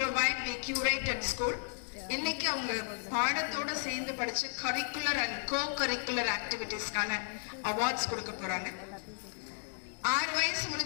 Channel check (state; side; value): silent; right; digital silence